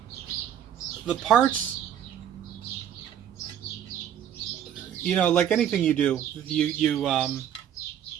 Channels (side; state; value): left; quieter; 9.8 dB